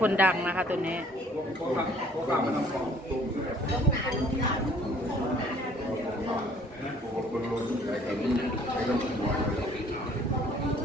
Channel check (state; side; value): normal; both; correlation 0.57